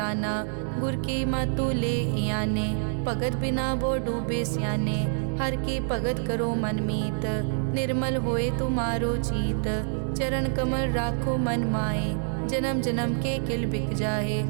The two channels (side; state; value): left; silent; 60 dB below the other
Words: गुर की मतु ले याने। भगत बिना वो डूबे स्याने, हर की भगत करो मन मीत। निर्मल होए तुम्हारो चीत, चरण कमल राखो मन माए। जन्म जन्म के किल बिक जाहे,